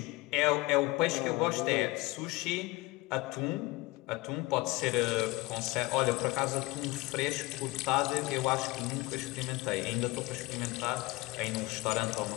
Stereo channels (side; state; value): right; quieter; 22.3 dB